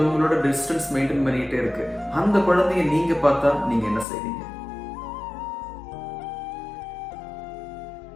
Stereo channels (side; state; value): right; drops out; at 4.0 s